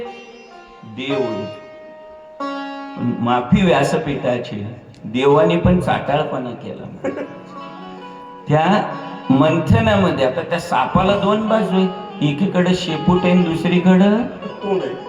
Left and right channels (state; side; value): identical; both; correlation 1.00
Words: देव, माफी व्यासपीठाची, देवाने पण चाटाळपणा केला त्या मंथनामध्ये. आता त्या सापाला 2 बाजू आहे, एकीकडे शेपूट आहे, दुसरीकडं